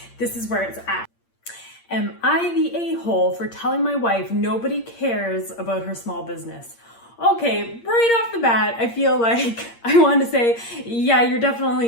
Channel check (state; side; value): late; right; 8.6 ms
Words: this is where it's at. Am I the a-hole for telling my wife nobody cares about her small business? Okay, right off the bat, I feel like I want to say, yeah, you're definitely